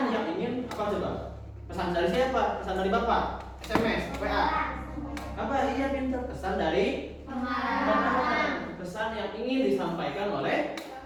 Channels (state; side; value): identical; both; correlation 1.00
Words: yang ingin apa coba? Pesan dari siapa? Pesan dari Bapak? SMS, WA? Apa? Iya pintar. Pesan dari pengarang. Pesan yang ingin disampaikan oleh